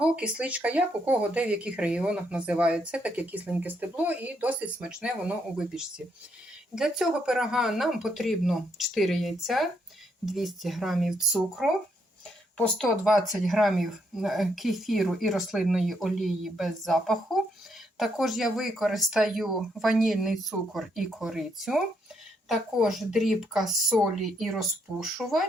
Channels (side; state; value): both; normal; correlation 0.74